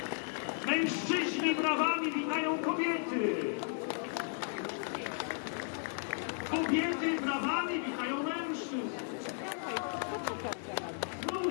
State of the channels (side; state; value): right; silent; 55 dB below the other